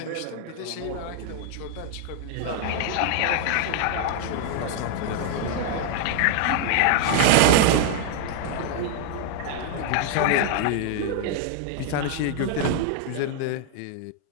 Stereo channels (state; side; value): different; both; correlation 0.00